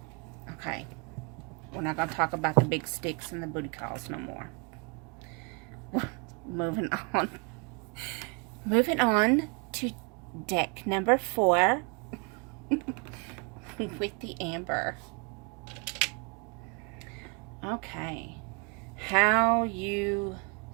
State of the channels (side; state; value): left; quieter; 33.2 dB